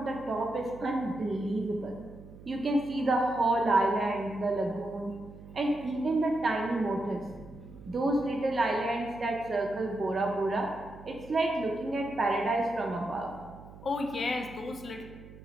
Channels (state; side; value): noise; right; hum, 18 dB below the sound